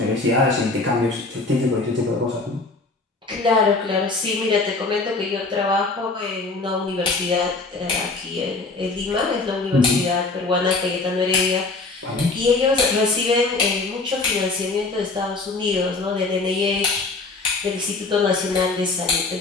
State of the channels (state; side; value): quieter; right; 3.6 dB